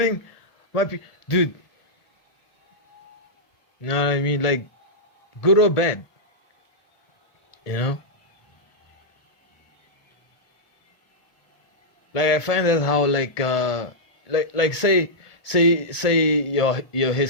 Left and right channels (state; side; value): late; right; 1.5 ms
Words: my dude. You know what I mean? Like, good or bad, you know? Like, I find that how, like say your